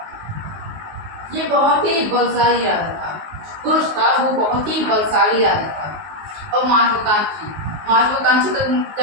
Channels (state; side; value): late; left; 19 ms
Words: ये बहुत ही बलशाली राजा था। कुरुश था वो बहुत ही बलशाली राजा था। और महत्वाकांक्षी का